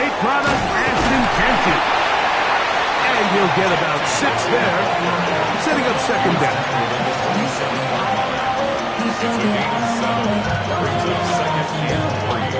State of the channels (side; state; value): both; identical; correlation 1.00